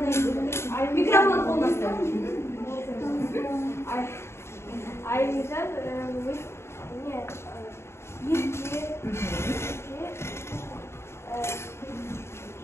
микрофон қолдасты? Айымжан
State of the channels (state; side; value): late; right; 0.13 ms